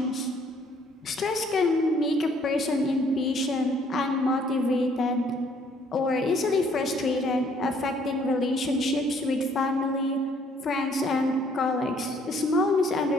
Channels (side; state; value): both; normal; correlation 0.63